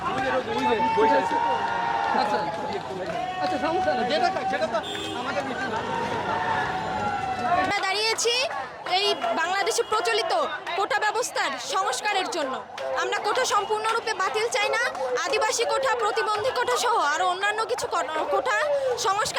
আচ্ছা সমস্যা নেই, যেটা তো আমাদের আমরা দাঁড়িয়েছি এই বাংলাদেশে প্রচলিত কোটা ব্যবস্থার সংস্কারের জন্য। আমরা কোটা সম্পূর্ণরূপে বাতিল চাই না, আদিবাসী কোটা, প্রতিবন্ধী কোটা সহ আরও অন্যান্য কিছু কোটা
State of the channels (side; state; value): both; identical; correlation 1.00